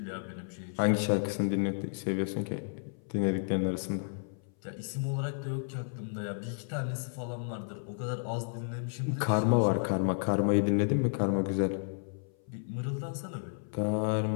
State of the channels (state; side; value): silent; right; 56 dB below the other